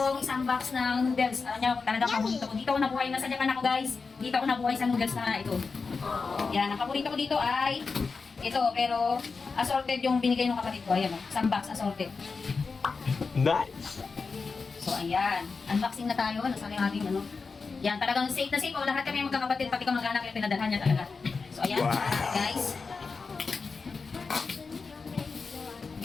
isang box ng noodles. Alam niyo, talagang paborito ko. Dito ako nabuhay na sa Japan ako, guys. Dito ako nabuhay sa noodles na ito. Yan, ang paborito ko dito ay ito, pero assorted yung binigay ng kapatid ko. Ayan, isang box assorted. Nice! So, ayan. Unboxing na tayo. Nasa yung ating ano. Yan, talagang safe na safe. O, lahat kami magkakapatid, pati kamag-anak yung pinadalhan niya talaga. So, ayan, Wow. guys.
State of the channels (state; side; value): quieter; right; 4.6 dB